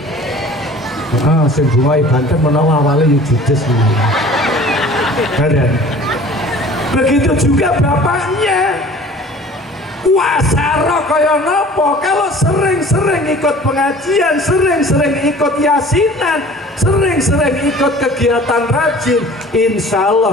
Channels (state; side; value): normal; both; correlation 0.46